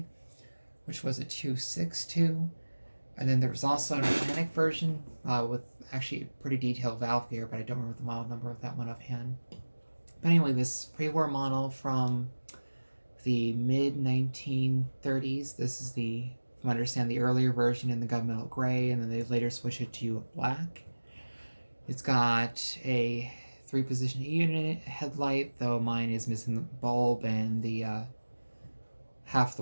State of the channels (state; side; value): inverted; both; correlation -1.00